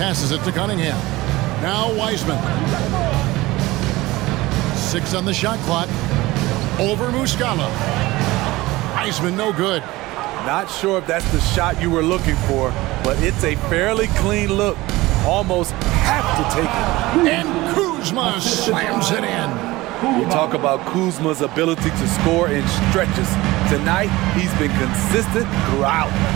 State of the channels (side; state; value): left; quieter; 19.5 dB